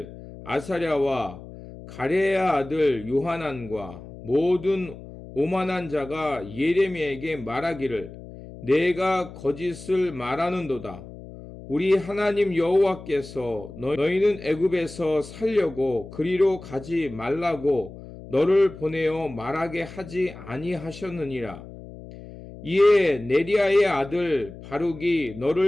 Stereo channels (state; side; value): noise; left; hum, 15 dB below the sound